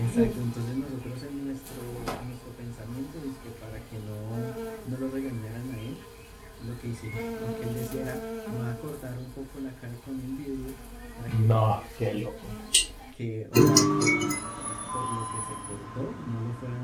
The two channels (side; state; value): both; identical; correlation 1.00